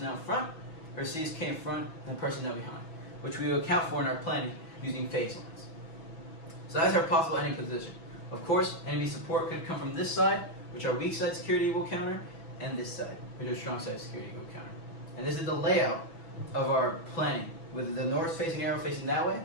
in front, or CSK in front and the personnel behind, which we will account for in our planning using phase lines. So that's our possible enemy position. Of course, enemy support could come from this side, which our weak side security will counter, and this side, which our strong side security will counter. And this is the layout of our planning, with the north-facing arrow facing that way,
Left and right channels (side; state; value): right; late; 6.1 ms